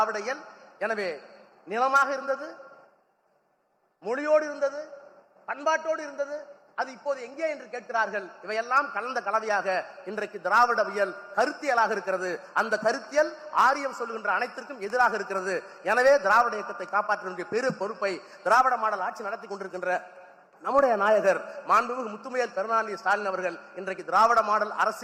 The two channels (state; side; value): identical; both; correlation 1.00